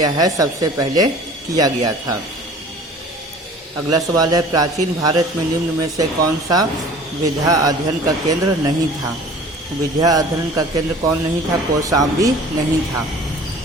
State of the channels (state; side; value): normal; both; correlation 0.46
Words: है, सबसे पहले किया गया था। अगला सवाल है, प्राचीन भारत में निम्न में से कौन सा विद्या अध्ययन का केंद्र नहीं था। विद्या अध्ययन का केंद्र कौन नहीं था? कौशाम्बी नहीं था।